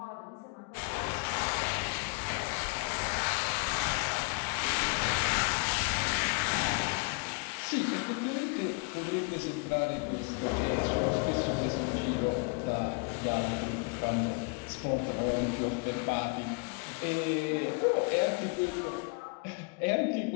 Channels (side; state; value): right; quieter; 33.4 dB